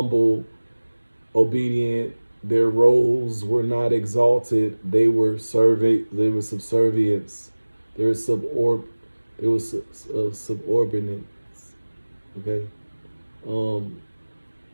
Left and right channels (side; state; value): both; inverted; correlation -1.00